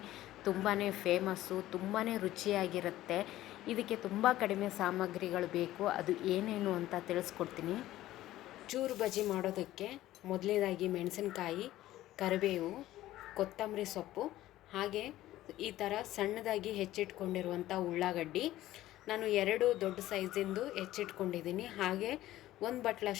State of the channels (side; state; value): right; quieter; 14.9 dB